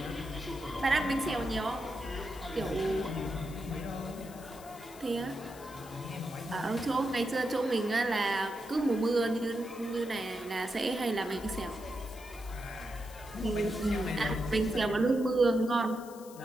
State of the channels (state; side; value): noise; left; hiss, 19 dB below the sound